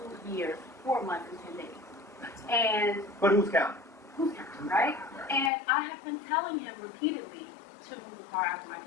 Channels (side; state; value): right; drops out; at 5.5 s